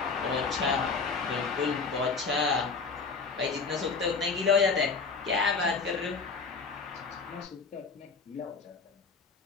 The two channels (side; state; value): right; quieter; 4.6 dB